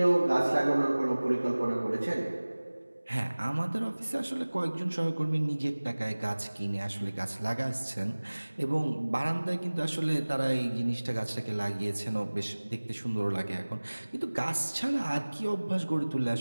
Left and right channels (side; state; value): both; inverted; correlation -1.00